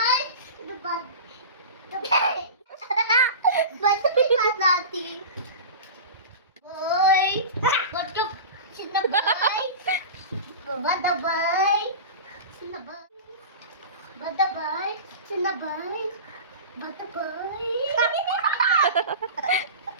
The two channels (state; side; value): inverted; both; correlation -0.31